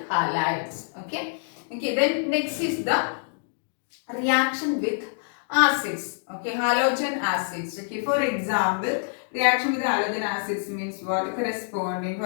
halides. Okay. Okay. Then next is the reaction with acids. Okay. Halogen acids. Okay. For example, reaction with halogen acids means what? Corresponding,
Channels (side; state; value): right; silent; digital silence